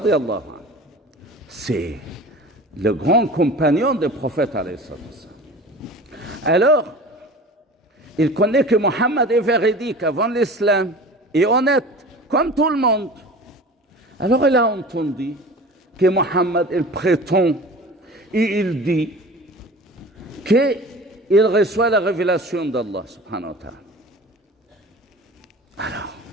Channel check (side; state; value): both; normal; correlation 0.39